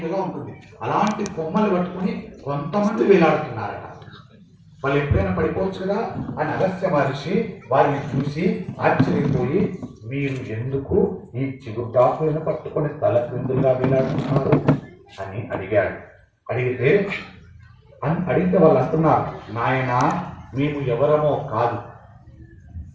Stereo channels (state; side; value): identical; both; correlation 1.00